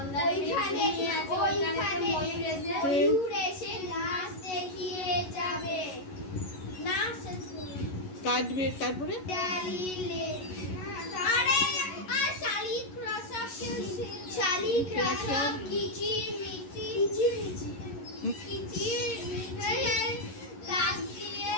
কাটবে তারপরে শালিক রসব কিচির মিচির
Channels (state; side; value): late; right; 11 ms